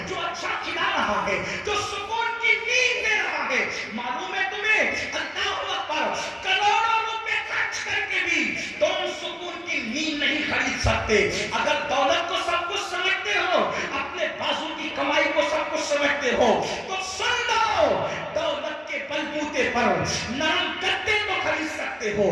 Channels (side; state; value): both; identical; correlation 1.00